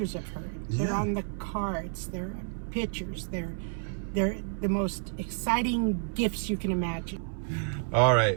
of her. They're Yeah. on the cards. They're pictures. They're the most exciting gifts you can imagine. all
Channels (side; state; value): left; silent; 58 dB below the other